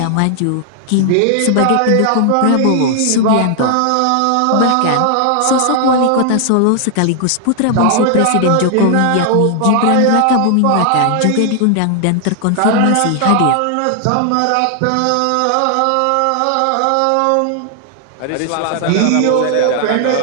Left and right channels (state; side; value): different; both; correlation 0.00